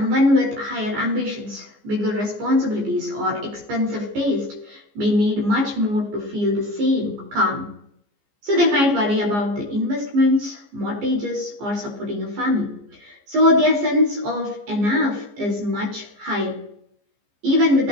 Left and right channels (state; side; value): late; left; 15 ms